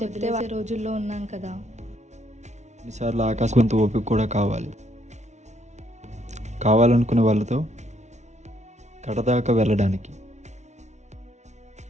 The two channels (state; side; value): late; left; 0.33 ms